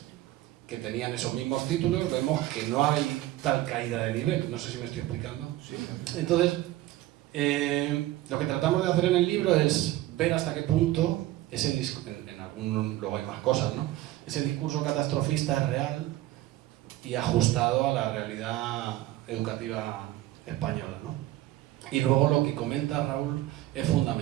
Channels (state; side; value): quieter; left; 15.4 dB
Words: que tenían esos mismos títulos, vemos que no hay tal caída de nivel. No sé si me estoy explicando. Sí. Entonces, lo que tratamos de hacer en el libro es ver hasta qué punto en luego hay más cosas, ¿no? Ese discurso catastrofista es real y ajustado a la realidad educativa española, ¿no? Y luego lo que comenta Raúl es